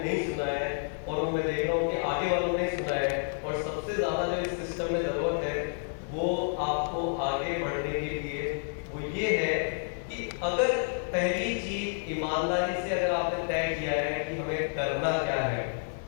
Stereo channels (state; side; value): silent; right; 58 dB below the other